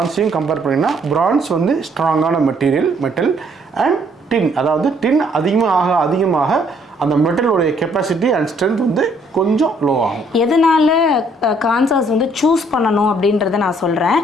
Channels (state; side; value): normal; both; correlation 0.65